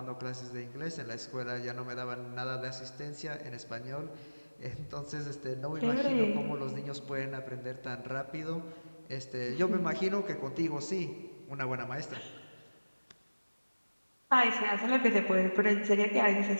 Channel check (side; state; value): both; inverted; correlation -1.00